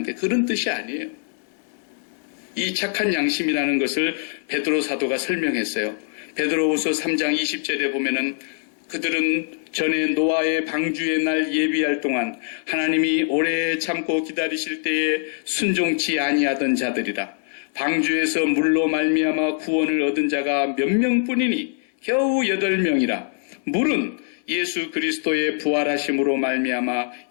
그런 뜻이 아니에요. 이 착한 양심이라는 것을 베드로 사도가 설명했어요. 베드로후서 3장 20절에 보면은 그들은 전에 노아의 방주의 날 예비할 동안 하나님이 오래 참고 기다리실 때에 순종치 아니하던 자들이라. 방주에서 물로 말미암아 구원을 얻은 자가 몇 명뿐이니 겨우 8명이라. 물은 예수 그리스도의 부활하심으로 말미암아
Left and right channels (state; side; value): silent; right; digital silence